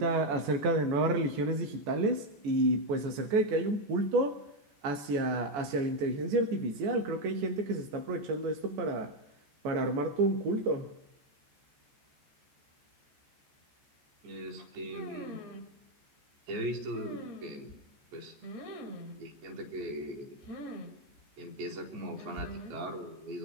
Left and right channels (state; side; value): late; left; 14 ms